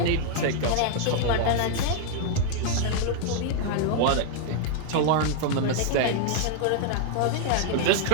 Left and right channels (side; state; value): both; different; correlation 0.00